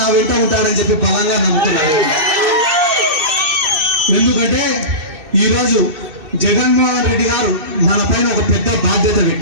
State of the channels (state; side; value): late; left; 2.6 ms